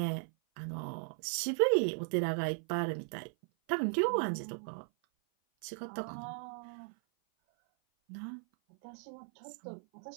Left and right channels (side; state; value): left; silent; 53 dB below the other